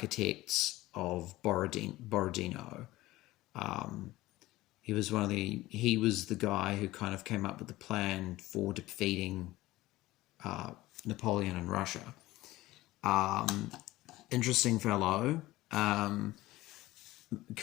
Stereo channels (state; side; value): quieter; right; 17.7 dB